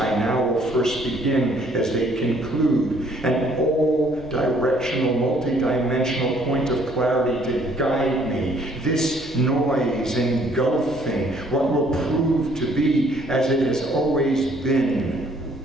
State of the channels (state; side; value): normal; both; correlation 0.62